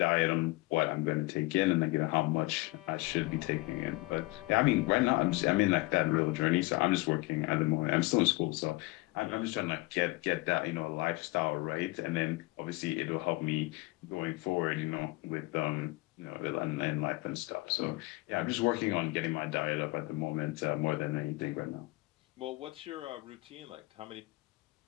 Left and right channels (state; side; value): quieter; right; 22.3 dB